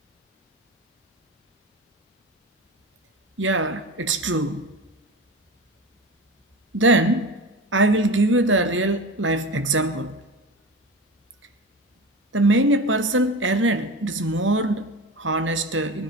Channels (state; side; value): normal; both; correlation 0.28